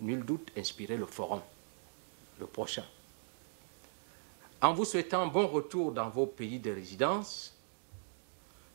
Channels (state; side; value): silent; left; digital silence